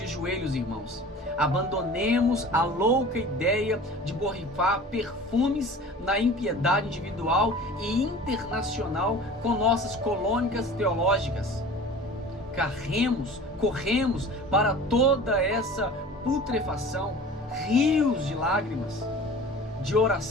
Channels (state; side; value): normal; both; correlation 0.41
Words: joelhos, irmãos. Abandonemos a louca ideia de borrifar perfumes na impiedade individual e internacional com nossas colônicas teológicas. Corremos para toda essa putrefação, rios de lágrimas, de